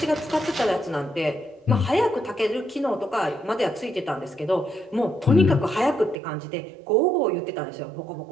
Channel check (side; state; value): left; drops out; at 6.2 s